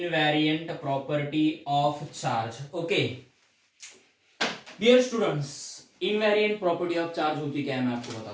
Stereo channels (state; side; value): identical; both; correlation 1.00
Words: property of charge, okay. Dear students, invariant property of charge होती क्या है मैं आपको